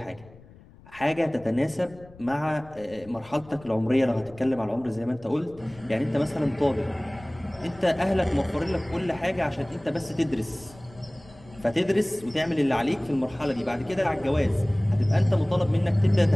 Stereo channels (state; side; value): noise; left; rumble, 22 dB below the sound